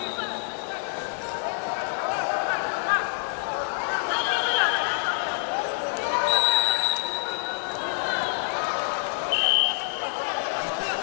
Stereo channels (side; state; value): right; silent; digital silence